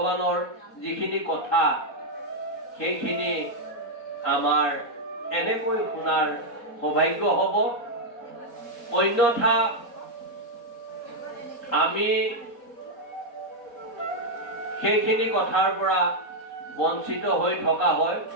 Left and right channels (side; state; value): right; late; 4.2 ms